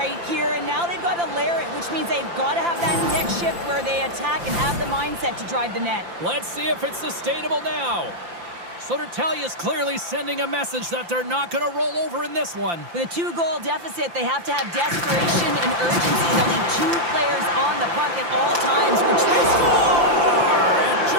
here, and now they've got to layer it, which means they've got to have that next shift where they attack and have the mindset to drive the net. Let's see if it's sustainable now. Soterlius clearly sending a message that they're not going to roll over in this one. With a 2-goal deficit, they have to have desperation and urgency. They'll need 2 players on the puck at all times, which they score! And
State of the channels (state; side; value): late; left; 5.8 ms